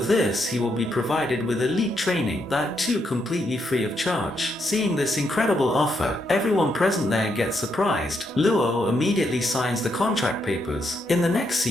this, he will be provided with elite training, that too completely free of charge. Seeing this incredible offer, everyone present there gets surprised. Luo immediately signs the contract papers. In the next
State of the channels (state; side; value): normal; both; correlation 0.78